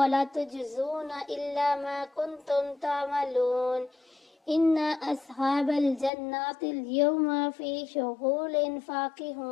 تجزون إلا ما كنتم تعملون إن أصحاب الجنات اليوم في شغل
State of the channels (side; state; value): right; drops out; at 6.1 s